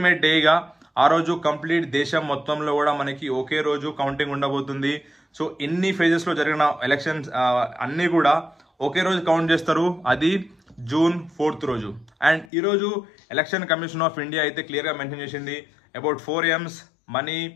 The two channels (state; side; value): drops out; right; at 12.5 s